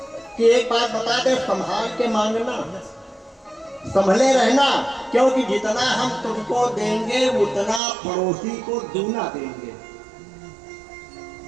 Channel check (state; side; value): drops out; left; at 7.8 s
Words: कि एक बात बता दे, संभाल के मांगना, संभले रहना, क्योंकि जितना हम तुमको देंगे उतना पड़ोसी को दूना देंगे।